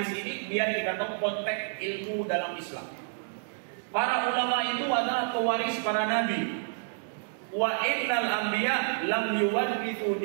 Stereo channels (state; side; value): silent; left; digital silence